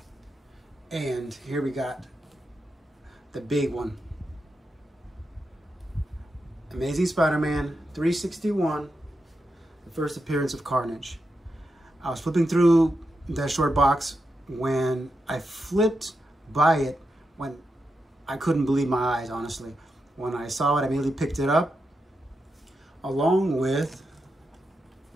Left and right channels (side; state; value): both; normal; correlation 0.86